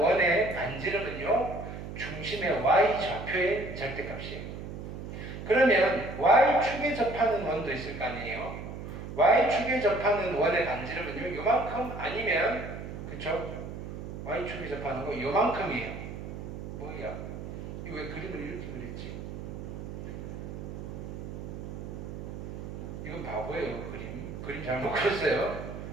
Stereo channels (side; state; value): right; noise; hum, 8 dB below the sound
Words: 반지름은요, 중심의 Y좌표의 절대값이에요. 그러면 Y축에 접하는 원도 있을 거 아니에요? Y축에 접하는 원의 반지름은요, 요만큼 아니면, 그쵸? Y축에 접하는 거 요만큼이에요. 뭐야? 이거 왜 그림을 이렇게 그렸지? 이건 바보예요, 그림. 그림 잘못 그렸어요.